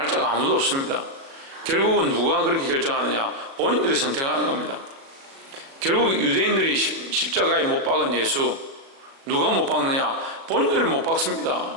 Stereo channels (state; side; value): late; left; 37 ms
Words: 자가 아무도 없습니다. 결국은 누가 그렇게 결정하느냐? 본인들이 선택하는 겁니다. 결국 유대인들이 십자가에 못 박은 예수 누가 못 박느냐? 본인들이 못 박습니다.